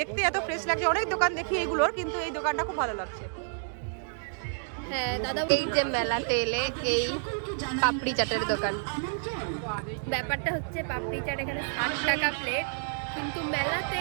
এত ফ্রেশ লাগছে। অনেক দোকান দেখি এগুলোর, কিন্তু এই দোকানটা খুব ভালো লাগছে। হ্যাঁ দাদা, এই যে মেলাতে এলে এই পাপড়ি চাটের দোকান। ব্যাপারটা হচ্ছে পাপড়ি চাট এখানে 60 টাকা প্লেট, কিন্তু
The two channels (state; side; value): silent; left; digital silence